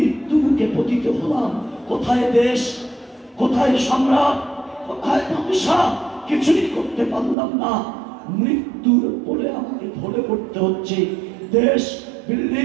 পতিত হলাম। কোথায় দেশ, কোথায় সম্রাট, কোথায় বাদশা, কিছুই করতে পারলাম না। মৃত্যুর বলে আমাকে ধরে পড়তে হচ্ছে। দেশ,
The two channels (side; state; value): left; drops out; at 7.4 s